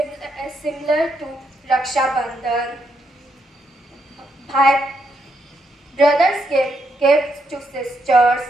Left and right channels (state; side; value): normal; both; correlation 0.78